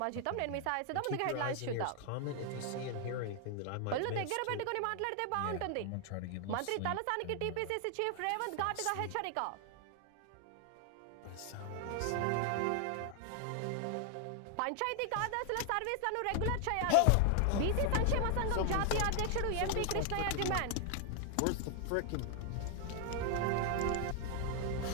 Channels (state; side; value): different; both; correlation 0.00